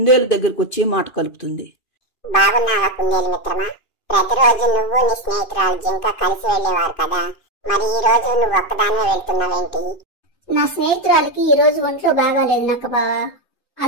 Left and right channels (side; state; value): right; late; 2.5 ms